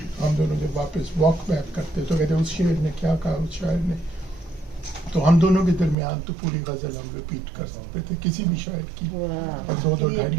हम दोनों जब वापस वॉक बैक करते तो कहते उस शेर ने क्या कहा, उस शायर ने, तो हम दोनों के दरमियान तो पूरी गज़ल हम रिपीट कर सकते थे किसी भी शायर की, और 2-2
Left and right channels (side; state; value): left; drops out; at 6.0 s